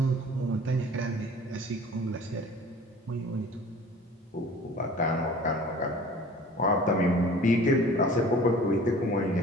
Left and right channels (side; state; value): both; normal; correlation 0.46